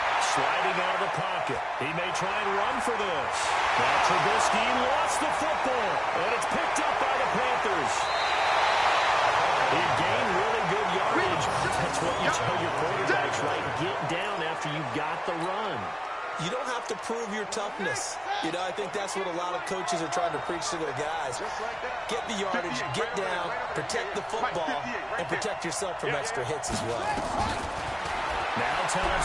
sliding out of the pocket. He may try and run for this. Now Trubisky lost the football, and it's picked up by the Panthers. He gained really good yardage. That's what you tell your quarterbacks, right? Get down after you got the run. You don't have to prove your toughness. You know, I think that's what a lot of coaches are trying to preach to their guys. Get the yardage, get down, protect the football, and protect yourself from extra hits as well. Now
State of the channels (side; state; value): both; identical; correlation 1.00